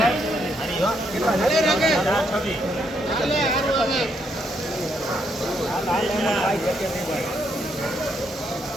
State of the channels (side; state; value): both; normal; correlation 0.75